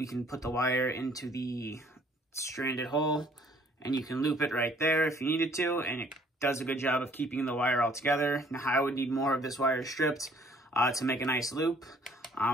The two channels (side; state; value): both; normal; correlation 0.59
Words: can put the wire into the stranded hole, and you can loop it right there if you needed to, and it does a good job of keeping the wire all together. Now, I would need more of this wire stripped to make a nice loop,